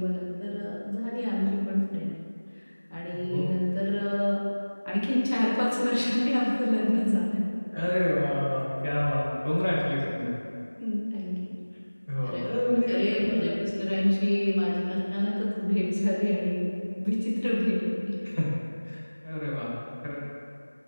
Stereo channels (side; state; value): both; inverted; correlation -1.00